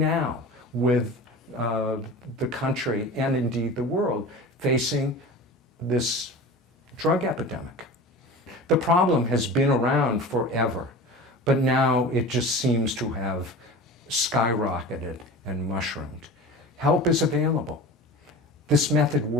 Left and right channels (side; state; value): both; normal; correlation 0.34